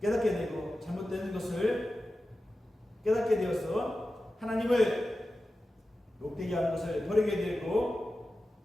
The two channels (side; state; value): both; normal; correlation 0.93